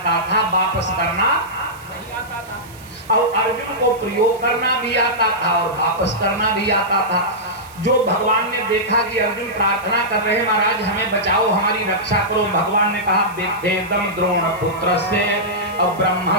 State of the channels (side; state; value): right; noise; hiss, 23 dB below the sound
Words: था, वापस करना नहीं आता था। और अर्जुन को प्रयोग करना भी आता था और वापस करना भी आता था। जो भगवान ने देखा कि अर्जुन प्रार्थना कर रहे हैं, महाराज हमें बचाओ, हमारी रक्षा करो, भगवान ने कहा वेदेदम द्रोण पुत्र से और